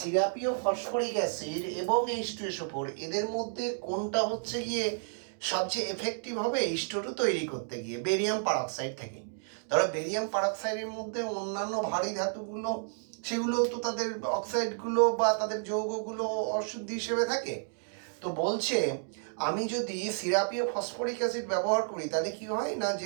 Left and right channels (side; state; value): left; silent; digital silence